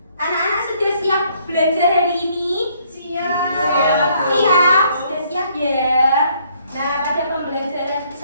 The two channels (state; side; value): inverted; both; correlation -0.66